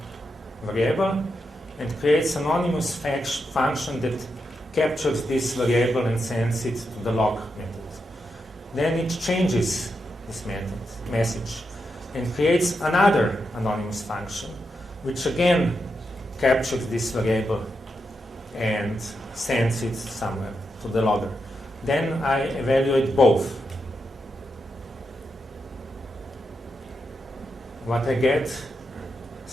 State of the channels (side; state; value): both; normal; correlation 0.85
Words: variable and creates an anonymous function that captures this variable and sends it to the log method. Then it changes this message and creates another anonymous function which again captures this variable and sends it somewhere to the logger. Then I evaluate both. What I get,